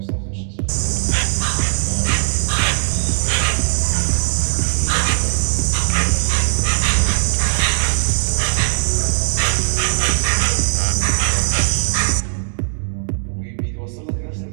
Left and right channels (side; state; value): left; silent; digital silence